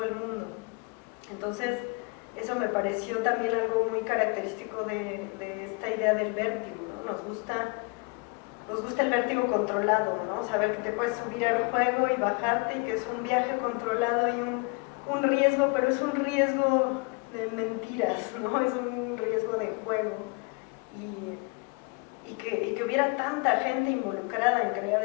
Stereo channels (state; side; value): quieter; right; 31.3 dB